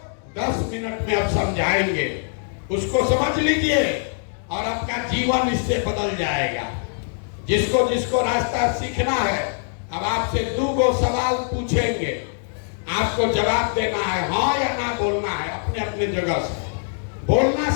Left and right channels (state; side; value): silent; right; digital silence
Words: 10 मिनट में अब समझाएंगे। उसको समझ लीजिए और आपका जीवन इससे बदल जाएगा। जिसको जिसको रास्ता सीखना है, अब आपसे 2 सवाल पूछेंगे, आपको जवाब देना है, हाँ या ना बोलना है। अपने अपने जगह से